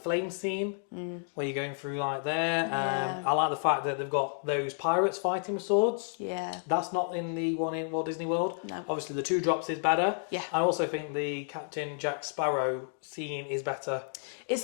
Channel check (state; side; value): silent; right; 57 dB below the other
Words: flame scene where you're going through like there. I like the fact that they've got those pirates fighting with swords. Yeah. That's not in the one in Walt Disney World. No. Obviously, the 2 drops is better. Yeah. I also think the Captain Jack Sparrow scene is better.